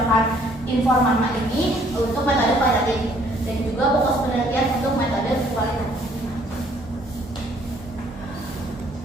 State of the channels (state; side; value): normal; both; correlation 0.62